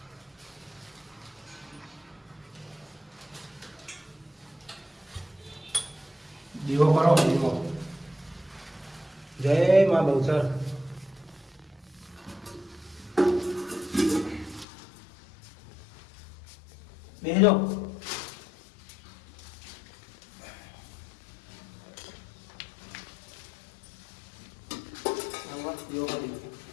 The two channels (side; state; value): right; drops out; at 14.7 s